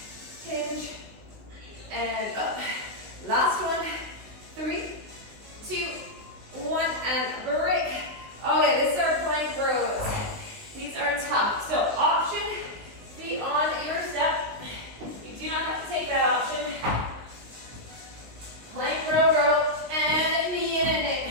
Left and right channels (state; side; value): late; left; 19 ms